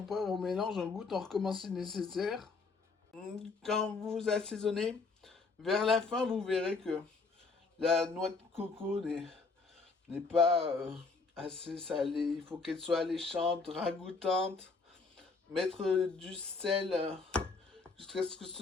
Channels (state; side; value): quieter; right; 4.3 dB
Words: poivre, on mélange, on goûte, on recommence si nécessaire. Quand vous assaisonnez, vers la fin, vous verrez que la noix de coco n'est pas assez salée. Il faut qu'elle soit alléchante, ragoûtante. Mettre du sel jusqu'à ce que